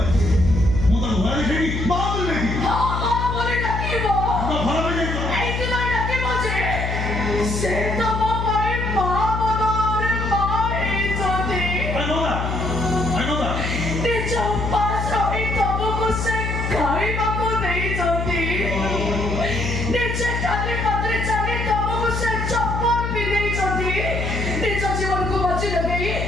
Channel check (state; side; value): noise; left; hum, 2 dB below the sound